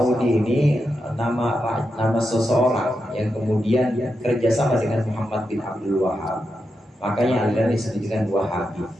nama seseorang yang kemudian kerjasama dengan Muhammad bin Abdul Wahhab. Makanya aliran disebut dengan Wahabi.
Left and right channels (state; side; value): normal; both; correlation 0.87